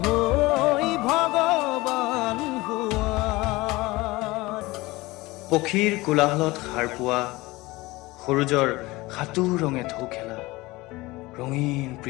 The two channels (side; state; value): right; quieter; 20.9 dB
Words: হৈ ভগৱান হোৱা। পক্ষীৰ কোলাহলত সাৰ পোৱা, সূৰুজৰ সাতু ৰঙে ঢৌ খেলা, ৰঙীন